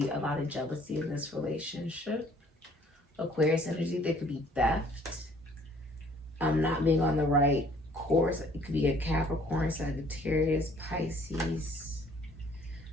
a lot of jealousy in this relationship. Aquarius energy, there could be theft. Not being on the right course. It could be a Capricorn, Sagittarius, Pisces.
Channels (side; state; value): both; normal; correlation 0.57